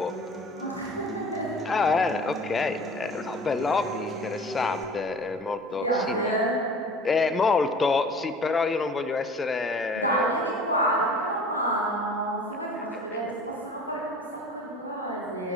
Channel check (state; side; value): normal; both; correlation 0.44